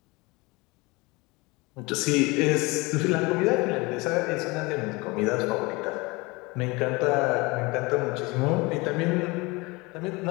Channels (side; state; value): right; quieter; 24.7 dB